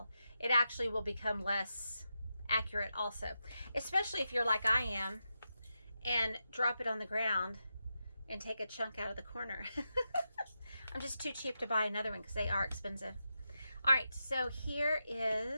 it actually will become less accurate also, especially if you're like I am and drop it on the ground and take a chunk out of the corner. I'm just too cheap to buy another one because they are expensive. All right, so here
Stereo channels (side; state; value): both; inverted; correlation -0.88